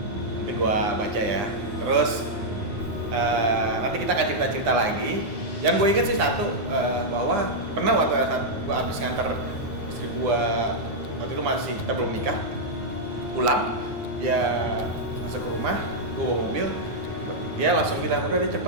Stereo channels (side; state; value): left; late; 9.8 ms